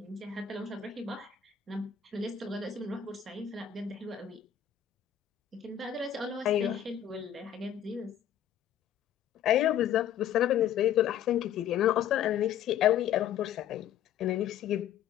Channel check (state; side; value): quieter; right; 9.8 dB